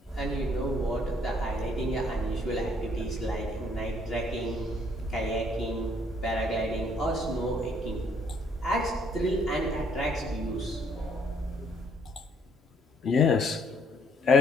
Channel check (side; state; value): both; normal; correlation 0.65